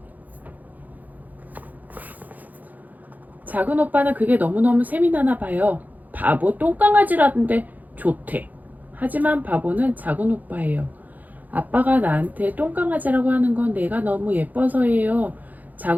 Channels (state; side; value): late; left; 0.082 ms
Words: 작은 오빠는 그게 너무너무 셈이 나나 봐요. 바보 똥강아지라던데 좋대. 하지만 바보는 작은 오빠예요. 아빠가 나한테 똥강아지라고 하는 건 내가 너무 예뻐서예요.